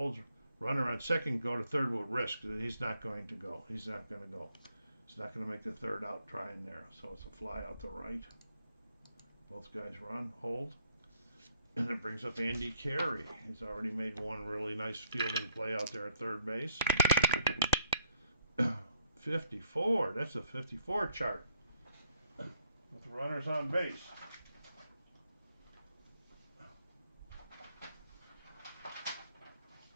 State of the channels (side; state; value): both; inverted; correlation -0.70